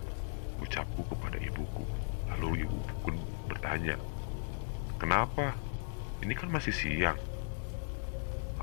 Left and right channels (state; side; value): silent; right; digital silence